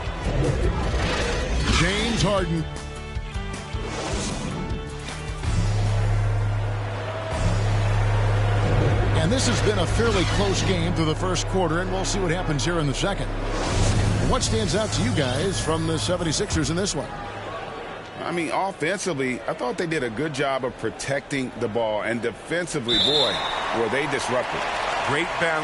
James Harden. And this has been a fairly close game through the first quarter, and we'll see what happens here in the second. What stands out to you guys from the 76ers in this one? I mean, offensively, I thought they did a good job of protecting the ball. And defensively, boy, were they disruptive. Great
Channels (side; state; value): both; identical; correlation 1.00